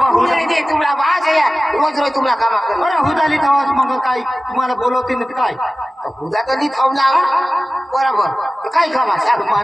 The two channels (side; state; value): both; normal; correlation 0.96